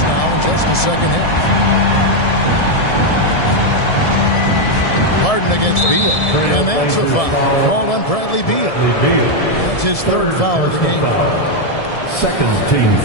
now in just the second half. Harden against Beal. And that's a foul called on Bradley Beal. That's his third foul of the game. Second team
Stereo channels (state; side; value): late; right; 1.7 ms